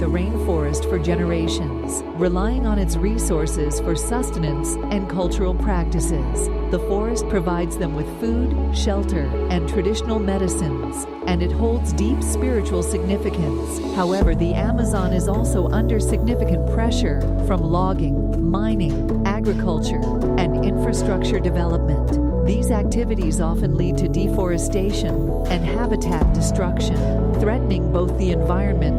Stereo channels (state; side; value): identical; both; correlation 1.00